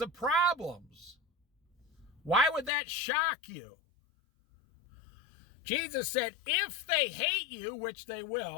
of problems? Why would that shock you? Jesus said, if they hate you, which they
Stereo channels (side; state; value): right; drops out; at 2.7 s